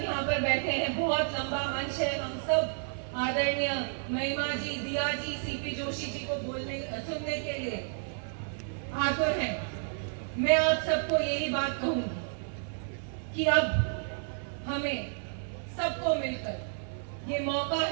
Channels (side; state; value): left; silent; 57 dB below the other